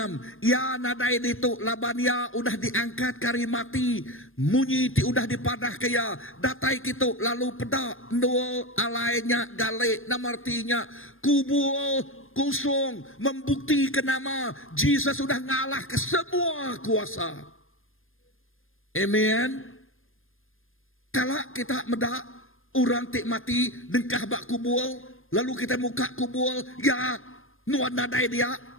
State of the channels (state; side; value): late; right; 0.59 ms